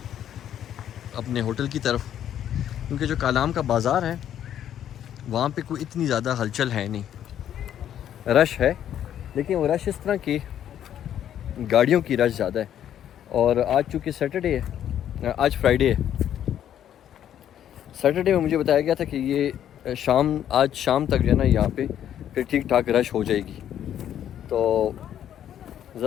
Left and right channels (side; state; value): right; quieter; 10.4 dB